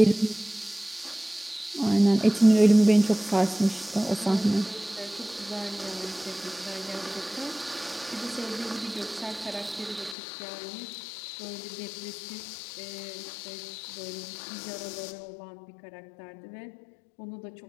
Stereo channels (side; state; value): right; drops out; at 10.2 s